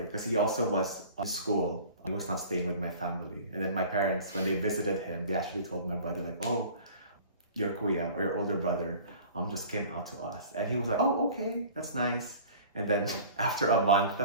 because he also was on school. He was not staying with my family. And then my parents, when they visited him, they actually told my brother, like, oh, your kuya or your older brother just came out to us. And he was like, oh, okay, that's nice. And then after a month,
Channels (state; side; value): inverted; both; correlation -0.44